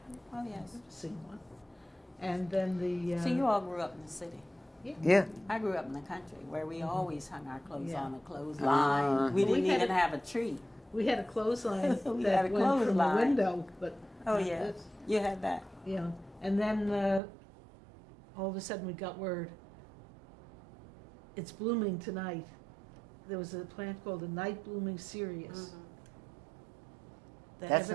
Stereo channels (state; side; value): drops out; left; at 17.2 s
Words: Oh, yes. I've seen one. And then the... So you all grew up in the city? Yeah. I grew up in the country where we always hung our clothes on a clothesline. We didn't even have a tree. We had a clothesline We that had a went from the clothesline. window, but... Oh, yeah. You had that. Yeah. And then all of a sudden we got word, it's blooming tonight. There was a plant called a night blooming cereus. That That's